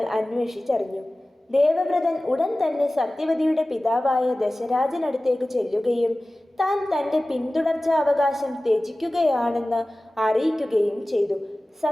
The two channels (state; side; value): normal; both; correlation 0.97